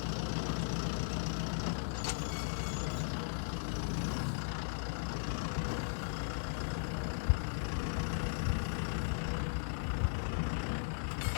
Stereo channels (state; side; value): silent; right; digital silence